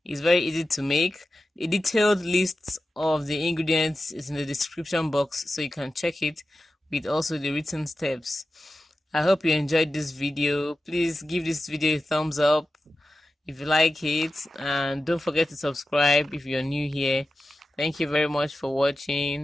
It's very easy to make. A detailed list of the ingredients is in the description box, so you can check it with also the written steps. I hope you enjoyed this video. Please give this video a thumbs up if you like it, and don't forget to subscribe if you're new here. Thank you very much for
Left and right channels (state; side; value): normal; both; correlation 0.93